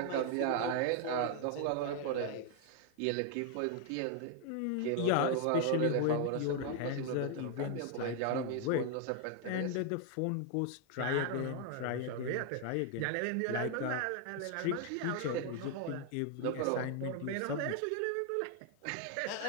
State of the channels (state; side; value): different; both; correlation 0.00